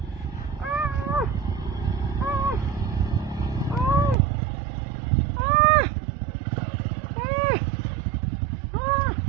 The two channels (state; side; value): drops out; left; at 4.2 s